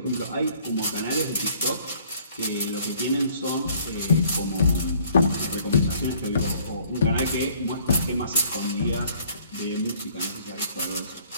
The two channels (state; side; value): inverted; both; correlation -0.59